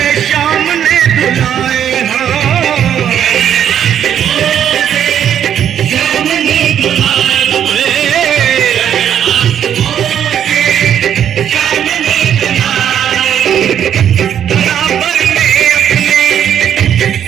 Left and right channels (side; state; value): left; quieter; 9.5 dB